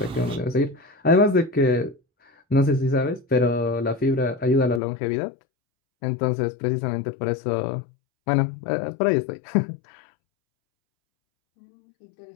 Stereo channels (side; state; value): right; drops out; at 4.8 s